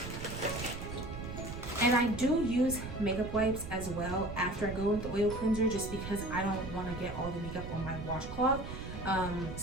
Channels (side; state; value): right; noise; rumble, 8 dB below the sound